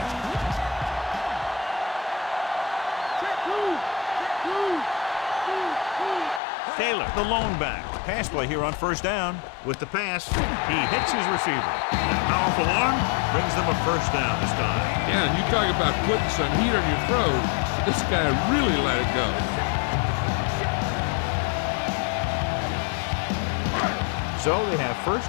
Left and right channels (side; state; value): right; drops out; at 6.4 s